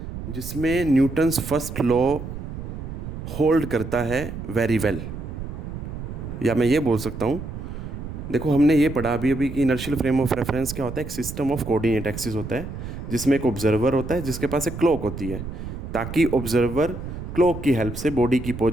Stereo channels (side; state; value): right; noise; rumble, 8 dB below the sound